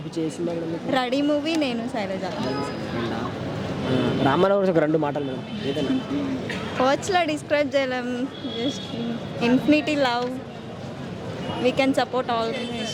ఏ సినిమా మేడం మీకు? Ready movie Nenu Sailaja. రామన్ గురించి ఒక 2 మాటలు మేడం ఏదైనా. వర్డ్స్లో డిస్క్రైబ్ చేయలేం, just infinity love, we can support all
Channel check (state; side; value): identical; both; correlation 1.00